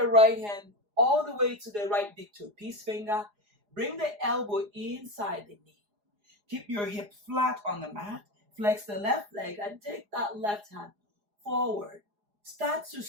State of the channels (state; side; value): late; left; 4.8 ms